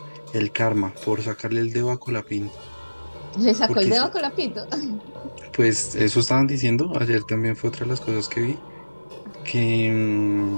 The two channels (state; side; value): inverted; both; correlation -1.00